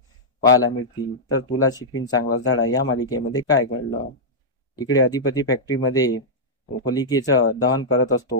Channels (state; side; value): normal; both; correlation -0.10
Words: पाहायला मिळतील. तर तुला शिकवीन चांगला धडा या मालिकेमध्ये काय घडलं. इकडे अधिपती फॅक्टरीमध्ये होलिकेचं दहन करत